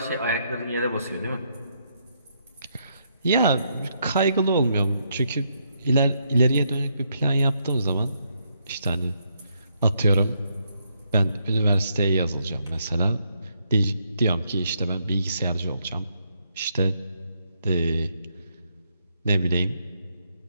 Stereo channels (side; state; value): both; inverted; correlation -0.76